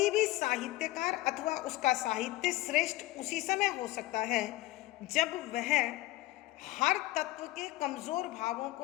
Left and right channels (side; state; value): right; quieter; 17.8 dB